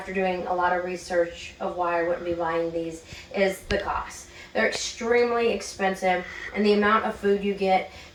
doing a lot of research of why I wouldn't be buying these, is the cost. They're extremely expensive, and the amount of food you get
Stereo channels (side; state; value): both; identical; correlation 1.00